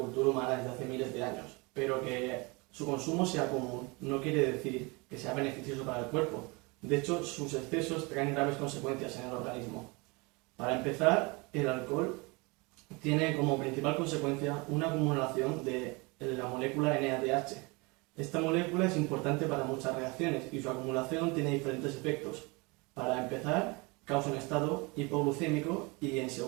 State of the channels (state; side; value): quieter; left; 27.3 dB